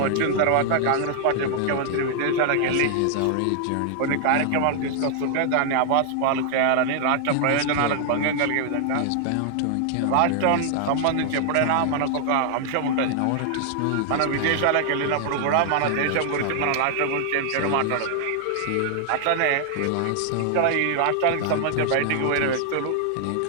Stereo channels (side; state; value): both; different; correlation 0.00